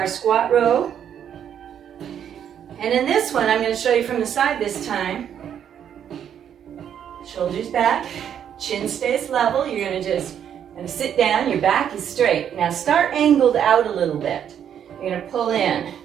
squat row. And in this one, I'm going to show you from the side this time. Shoulders back, chin stays level. You're going to sit down. Your back is straight. Now start angled out a little bit. You're going to pull in.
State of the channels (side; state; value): left; quieter; 9.1 dB